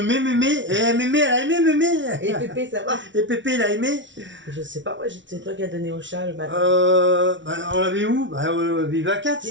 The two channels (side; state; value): left; late; 0.55 ms